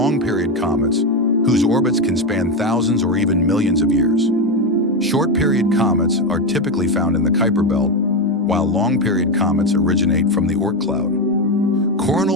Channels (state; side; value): normal; both; correlation 0.11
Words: comets, whose orbits can span thousands or even millions of years. Short-period comets are typically found in the Kuiper Belt, while long-period comets originate from the Oort cloud.